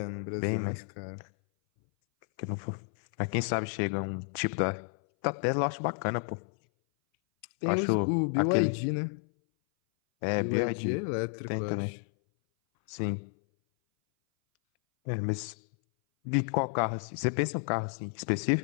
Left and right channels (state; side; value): silent; right; 57 dB below the other